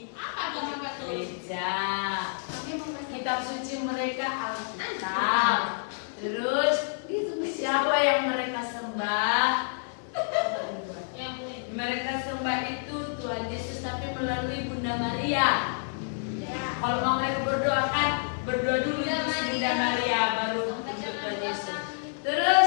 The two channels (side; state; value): right; silent; digital silence